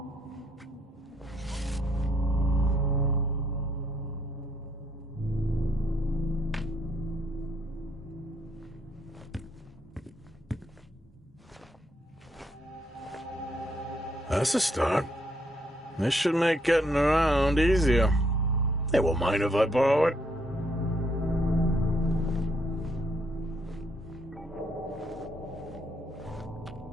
That's a start. This should make getting around easier. They won't mind if I borrow it.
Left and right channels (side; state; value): both; normal; correlation 0.72